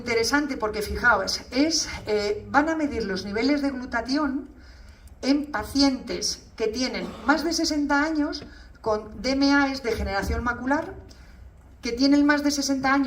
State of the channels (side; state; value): both; identical; correlation 1.00